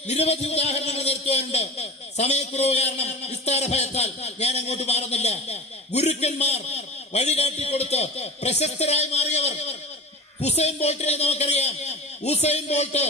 നിരവധി ഉദാഹരണങ്ങൾ നിരത്തുവാനുണ്ട്. സമയക്കുറവ് കാരണം വിസ്താര ഭയത്താൽ ഞാൻ അങ്ങോട്ട് മാറുന്നില്ല. ഗുരുക്കന്മാർ വഴികാട്ടിക്കൊടുത്ത് പ്രശസ്തരായി മാറിയവർ. ഹുസൈൻ ബോൾട്ടിനെ നമുക്കറിയാം. ഹുസൈൻ ബോൾട്ട്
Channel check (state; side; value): normal; both; correlation 0.33